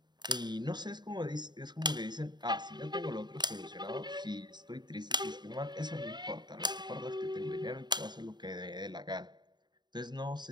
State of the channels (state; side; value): late; left; 0.21 ms